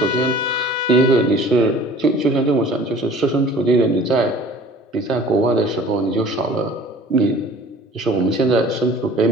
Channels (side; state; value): both; normal; correlation 0.47